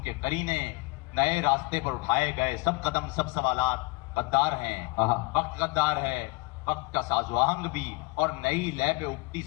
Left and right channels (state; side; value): quieter; right; 26.1 dB